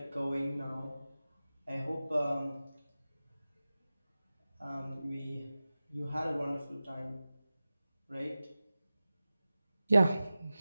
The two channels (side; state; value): both; inverted; correlation -0.95